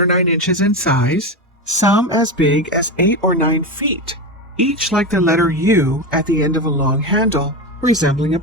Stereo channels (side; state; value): both; normal; correlation 0.18